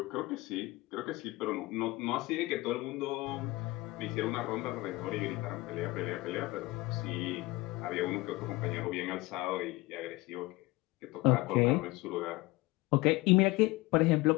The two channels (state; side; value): quieter; right; 20.9 dB